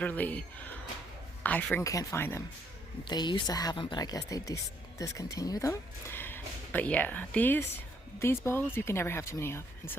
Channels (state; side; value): normal; both; correlation 0.70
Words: I freaking can't find them. They used to have them, but I guess they discontinued them. But yeah, these bowls you can never have too many of, and